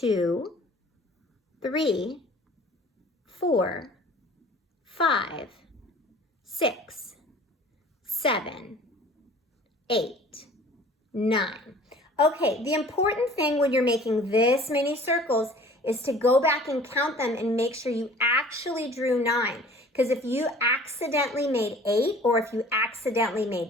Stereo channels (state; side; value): normal; both; correlation 0.48